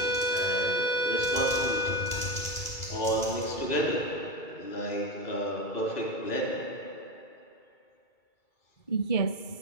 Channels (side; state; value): right; late; 2.3 ms